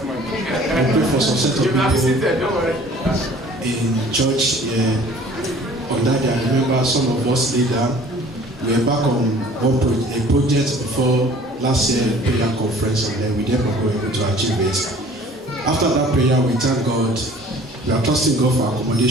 You prayed for some set of You can't be people seated, don't worry. in church. On that day, I remember some of us later, we were back on a project before last year prayer conference, and then we never were able to achieve it. After that prayer, we thank God. We are trusting God for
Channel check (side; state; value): both; normal; correlation 0.50